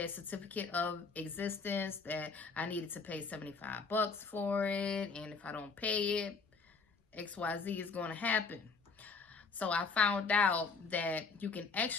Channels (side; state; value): right; quieter; 4.8 dB